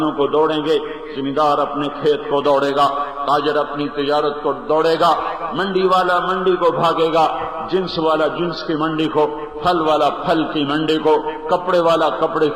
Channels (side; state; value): both; identical; correlation 1.00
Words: کو دوڑیں گے، زمیندار اپنے کھیت کو دوڑے گا، تاجر اپنی تجارت کو دوڑے گا، منڈی والا منڈی کو بھاگے گا، جنس والا جنس کی منڈی کو، پھل والا پھل کی منڈی کو، کپڑے والا کپڑے